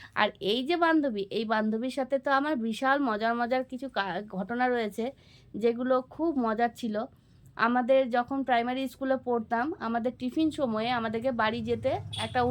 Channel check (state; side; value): identical; both; correlation 1.00